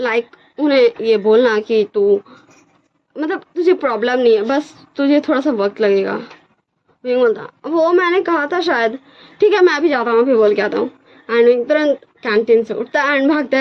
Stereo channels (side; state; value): both; identical; correlation 1.00